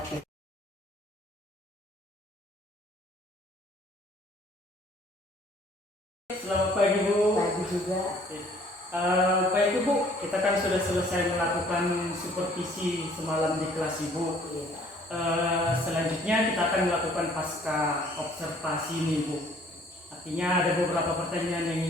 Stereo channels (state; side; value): normal; both; correlation 0.58